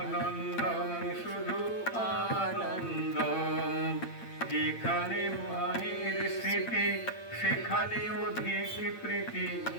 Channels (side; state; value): right; late; 8.8 ms